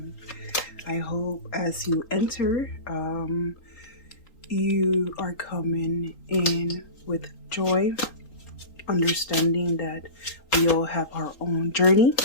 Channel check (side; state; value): right; late; 3.9 ms